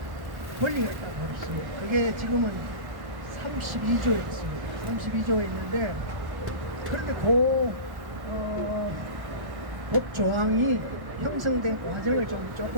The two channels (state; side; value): late; left; 1.1 ms